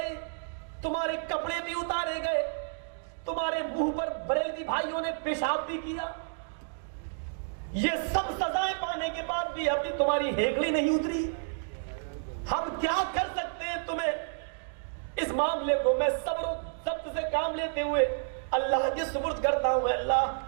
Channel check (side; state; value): left; silent; digital silence